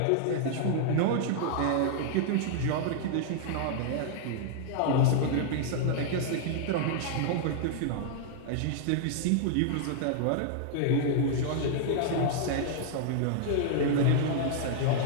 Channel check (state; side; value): different; both; correlation -0.01